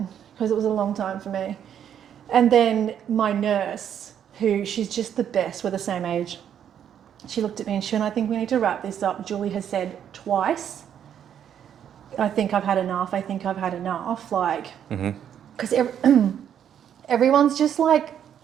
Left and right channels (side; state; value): left; quieter; 9.2 dB